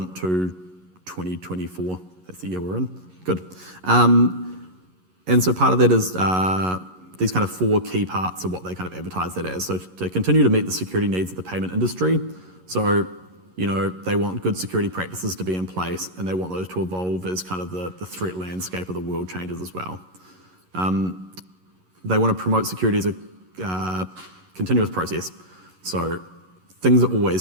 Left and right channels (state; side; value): late; left; 11 ms